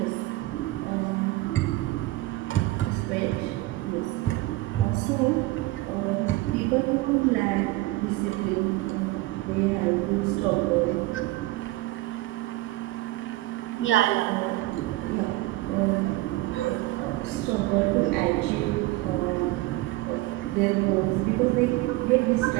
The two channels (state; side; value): quieter; left; 18.7 dB